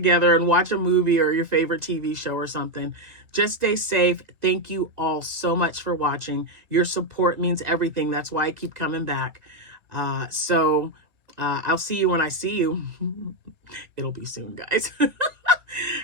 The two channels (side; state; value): left; late; 2.2 ms